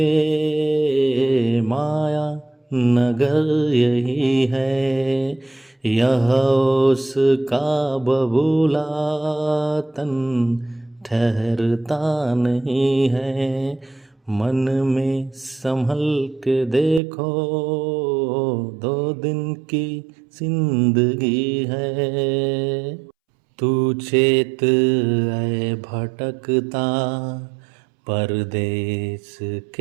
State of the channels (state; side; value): drops out; left; at 17.0 s